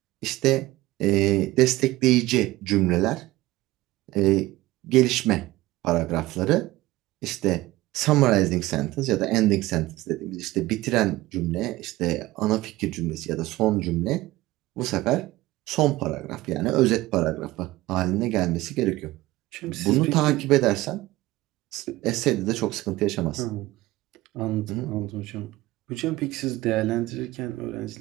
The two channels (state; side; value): quieter; left; 18.0 dB